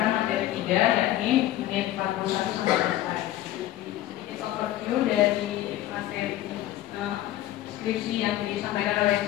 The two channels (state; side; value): quieter; right; 14.2 dB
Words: materi 3, yakni menit 41 sampai selesai. Sedikit overview dari materi skripsi yang disampaikan oleh